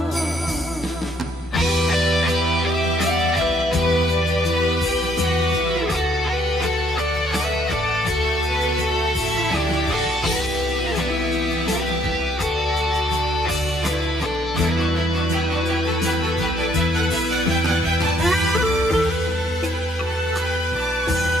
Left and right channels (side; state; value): both; normal; correlation 0.67